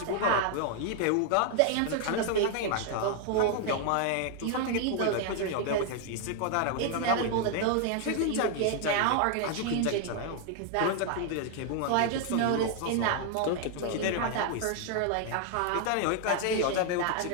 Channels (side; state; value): both; different; correlation 0.00